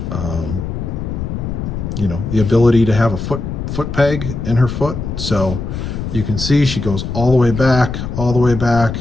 you know, the ability to have a foot peg in her foot. So you can see she goes all the way back, all the way back.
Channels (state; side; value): noise; left; rumble, 5 dB below the sound